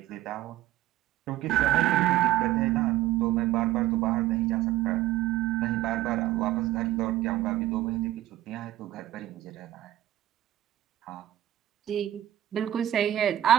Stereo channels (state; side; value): quieter; left; 13.9 dB